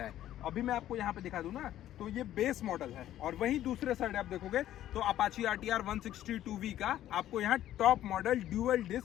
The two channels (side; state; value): right; quieter; 12.6 dB